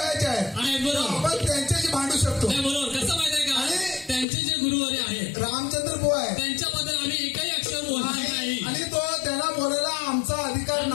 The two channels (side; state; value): right; drops out; at 4.2 s